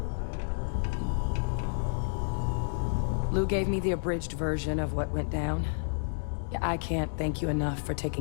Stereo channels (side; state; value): right; silent; digital silence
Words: Lou gave me the abridged version of what went down. Yeah, I can't thank you enough for